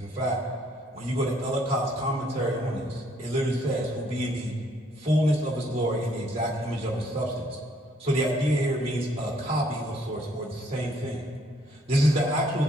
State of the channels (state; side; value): normal; both; correlation 0.66